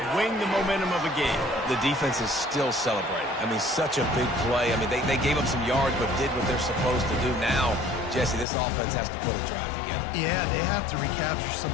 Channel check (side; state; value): right; drops out; at 8.5 s